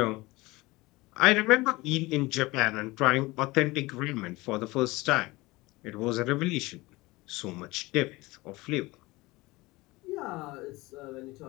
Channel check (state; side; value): quieter; right; 21.5 dB